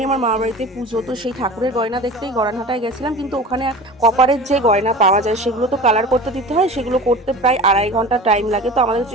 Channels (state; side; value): normal; both; correlation 0.36